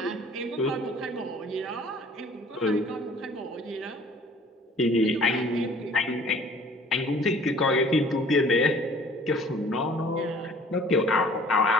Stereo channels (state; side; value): normal; both; correlation 0.51